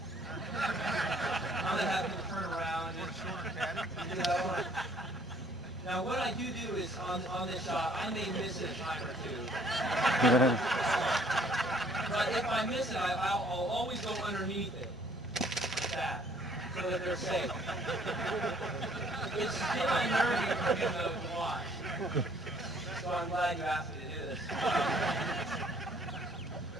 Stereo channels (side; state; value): both; normal; correlation 0.60